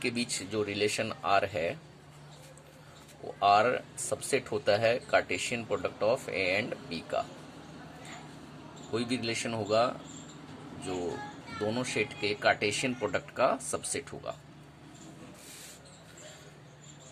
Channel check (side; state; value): both; identical; correlation 1.00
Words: बीच जो रिलेशन आर है वो आर सबसेट होता है Cartesian product of A and B का। कोई भी रिलेशन होगा जो दोनों सेट के कार्टेशियन प्रोडक्ट का सबसेट होगा।